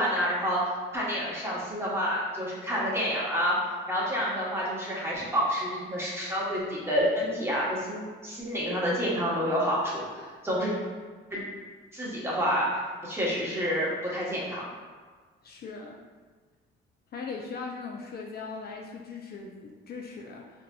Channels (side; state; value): both; normal; correlation 0.28